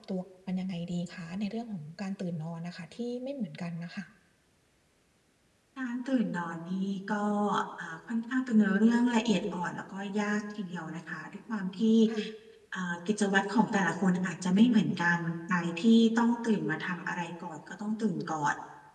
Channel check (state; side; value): identical; both; correlation 1.00